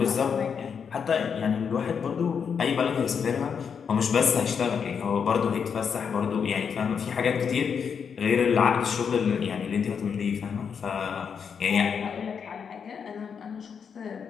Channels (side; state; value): right; quieter; 6.7 dB